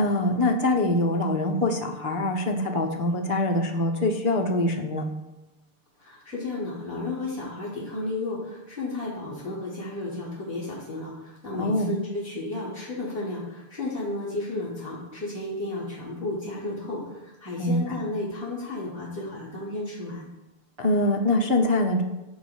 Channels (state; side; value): late; left; 6.8 ms